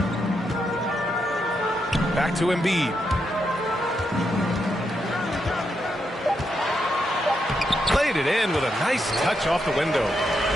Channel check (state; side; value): normal; both; correlation 0.82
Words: Back to Embiid. Played it in with a nice touch off the window.